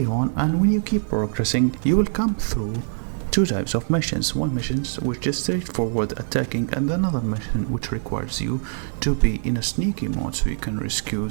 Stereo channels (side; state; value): left; silent; digital silence